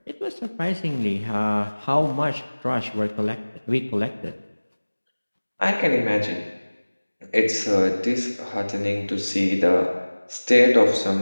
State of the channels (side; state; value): both; inverted; correlation -1.00